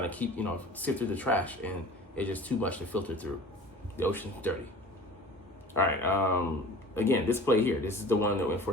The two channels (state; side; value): normal; both; correlation 0.42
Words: to keep, sift through the trash, and it's just too much to filter through. The ocean's dirty. All right, again, this play here, this is the one that went for